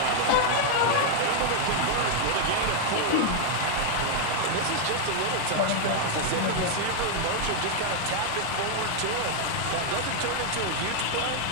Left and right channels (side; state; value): both; different; correlation 0.00